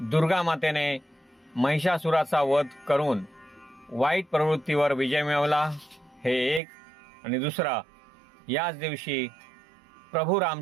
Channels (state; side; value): drops out; left; at 6.6 s